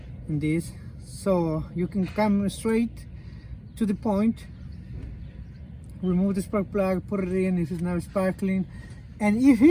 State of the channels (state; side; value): identical; both; correlation 1.00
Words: in this. So you can come straight to the point, remove the spark plug, put it in if it's not sparkling. And if